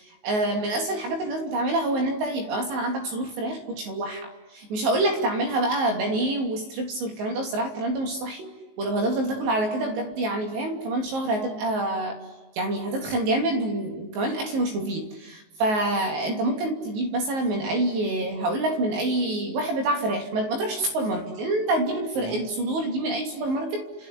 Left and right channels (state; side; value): late; left; 19 ms